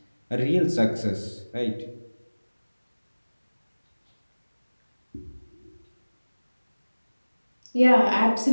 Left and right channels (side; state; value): both; inverted; correlation -1.00